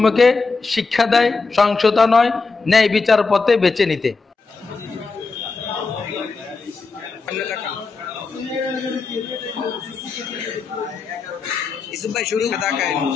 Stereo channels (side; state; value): right; quieter; 4.3 dB